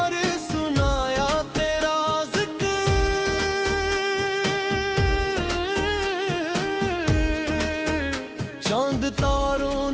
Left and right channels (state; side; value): identical; both; correlation 1.00